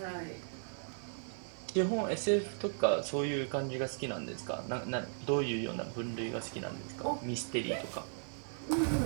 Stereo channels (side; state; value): left; silent; 53 dB below the other